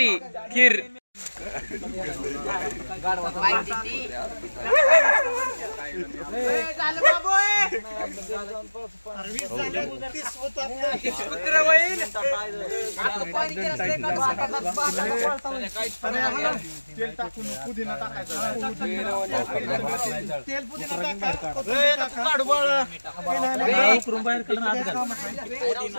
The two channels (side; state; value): both; inverted; correlation -1.00